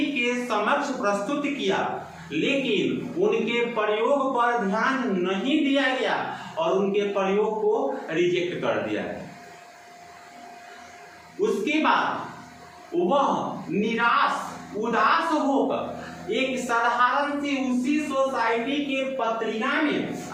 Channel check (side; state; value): both; identical; correlation 1.00